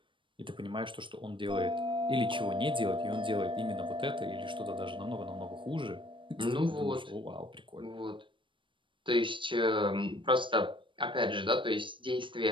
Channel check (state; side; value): late; left; 0.24 ms